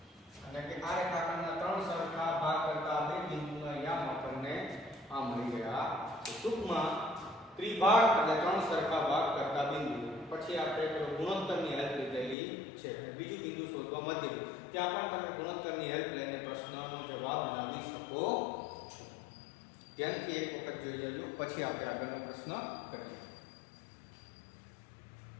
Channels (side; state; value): right; drops out; at 12.4 s